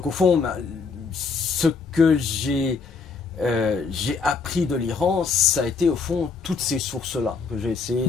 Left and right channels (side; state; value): right; quieter; 4.9 dB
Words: au fond, ce que j'ai appris de l'Iran, ça a été au fond toutes ces sources-là que j'ai essayé